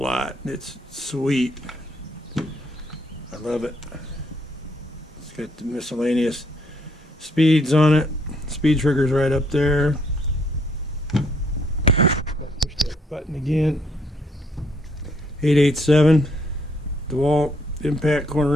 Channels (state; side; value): normal; both; correlation 0.69